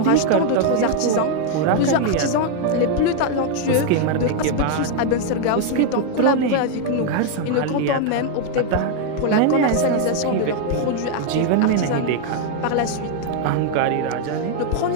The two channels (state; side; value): different; both; correlation 0.00